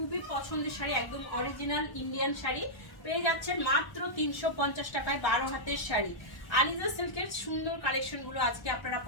পছন্দের শাড়ি, একদম অরিজিনাল ইন্ডিয়ান শাড়ি পেয়ে যাচ্ছেন মাত্র 350 টাকায় 12 হাতের শাড়ি। আলিজা সিল্কের সুন্দর কালেকশনগুলো আজকে আপনারা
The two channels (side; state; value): right; late; 1.3 ms